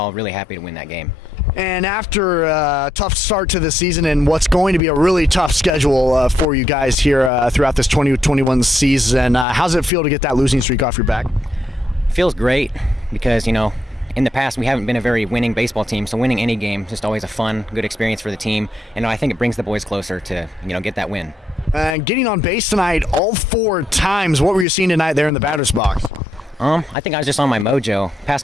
really happy to win that game. And after a tough start to the season and what's going to be a really tough schedule for you guys here throughout this 2021 season, how's it feel to get that losing streak off your back? Feels great because, in the past, we haven't been a very winning baseball team, so winning any game is just always a fun, good experience for the team. And I think it brings the boys closer to, get that win. Getting on base tonight all 4 times, what were you seeing tonight there in the batter's box? I think I was just on my mojo.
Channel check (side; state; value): both; normal; correlation 0.78